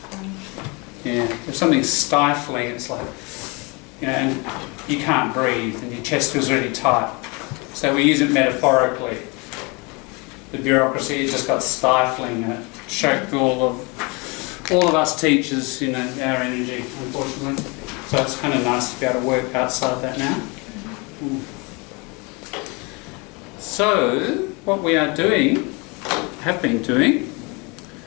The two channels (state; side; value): quieter; right; 28.9 dB